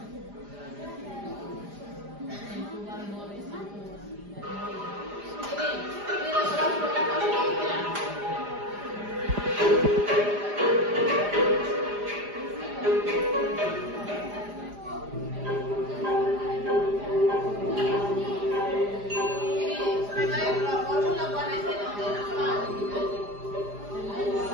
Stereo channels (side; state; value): left; late; 4.9 ms